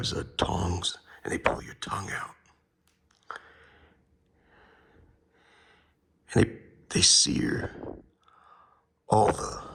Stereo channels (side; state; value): both; identical; correlation 1.00